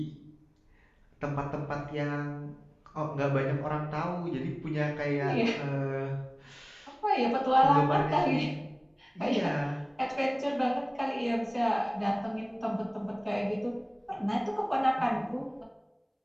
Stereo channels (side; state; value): both; identical; correlation 1.00